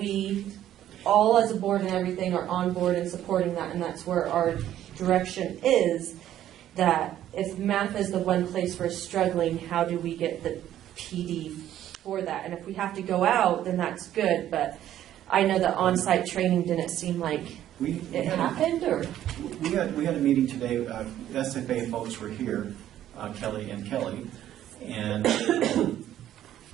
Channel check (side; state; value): left; quieter; 11.9 dB